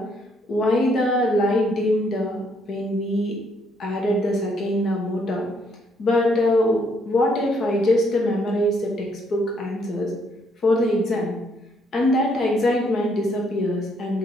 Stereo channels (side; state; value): both; normal; correlation 0.70